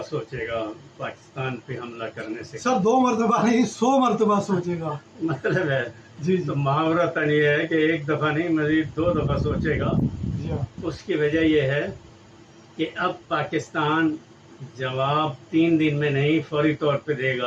سوچے گا پاکستان پہ حملہ کرنے سے. سر 2 مرتبہ نہیں 100 مرتبہ سوچے گا. مطلب ہے جی تو محاورتاً یہ ہے کہ 1 دفعہ نہیں مزید 2 دفعہ سوچے گا. اس کی وجہ یہ ہے کہ اب پاکستان جواب 3 دن میں نہیں فوری طور پہ دے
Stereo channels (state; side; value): identical; both; correlation 1.00